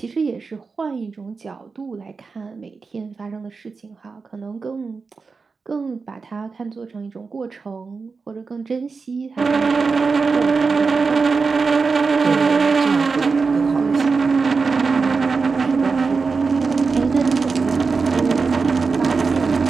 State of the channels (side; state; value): left; quieter; 4.7 dB